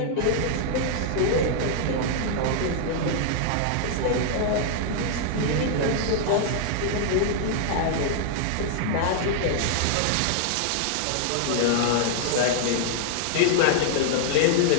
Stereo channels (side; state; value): both; different; correlation -0.01